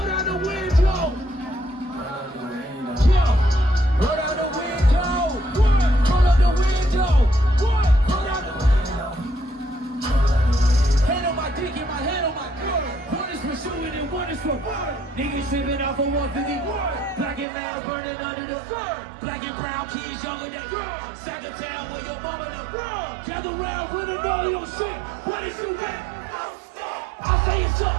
down the window. Yeah. Go down the window. What? Go down the window. What? Go down the window. Hand on my dick and my hand on my girl. One is for shooting and one is for fun. Niggas tripping off of 151. Black and loud burning under the sun. Black and brown kids younger than girls. Sack of town where your mama the world. Gather round with a know your shit. What is you get? I say it's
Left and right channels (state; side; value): drops out; left; at 17.4 s